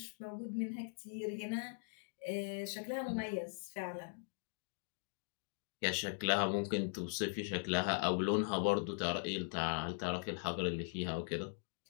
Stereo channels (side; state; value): right; silent; digital silence